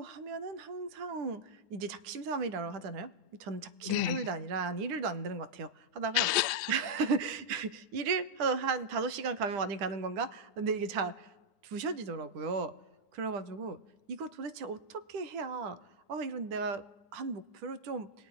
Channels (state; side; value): late; left; 10 ms